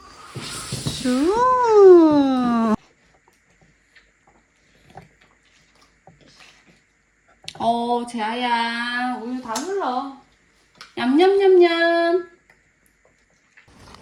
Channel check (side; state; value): both; identical; correlation 1.00